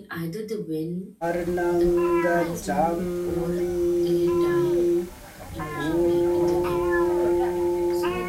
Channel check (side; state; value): both; identical; correlation 1.00